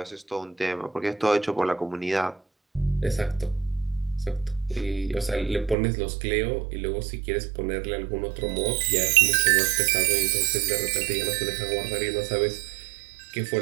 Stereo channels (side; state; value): left; drops out; at 5.8 s